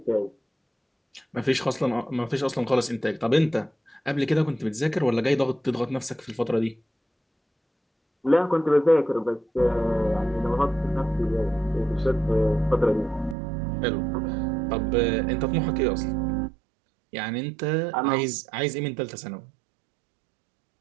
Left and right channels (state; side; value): drops out; left; at 13.4 s